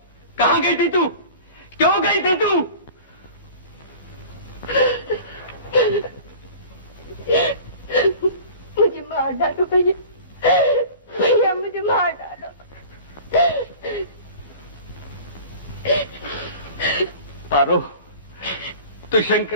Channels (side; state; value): both; inverted; correlation -0.40